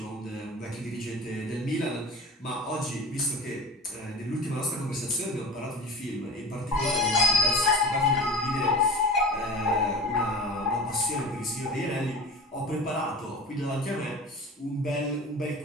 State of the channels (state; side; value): normal; both; correlation 0.35